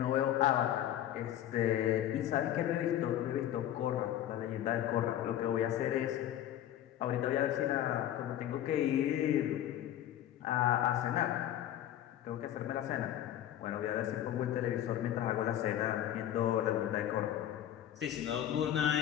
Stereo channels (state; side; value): quieter; right; 11.7 dB